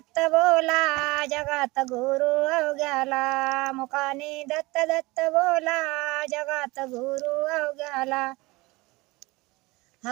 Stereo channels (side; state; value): left; quieter; 22.6 dB